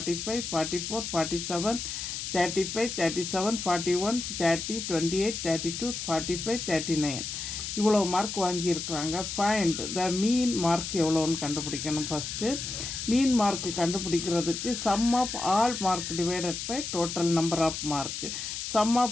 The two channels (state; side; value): noise; left; hiss, 5 dB below the sound